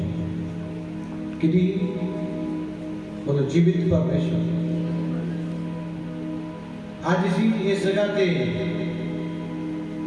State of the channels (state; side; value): identical; both; correlation 1.00